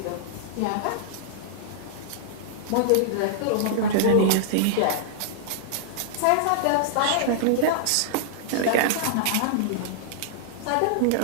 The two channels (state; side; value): different; both; correlation -0.01